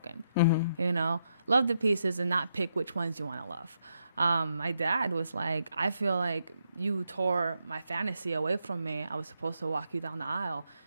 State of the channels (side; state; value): both; inverted; correlation -0.80